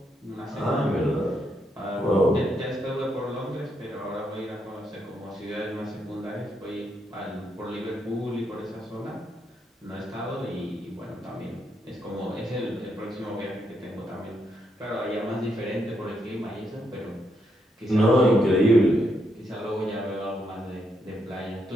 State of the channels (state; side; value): normal; both; correlation 0.78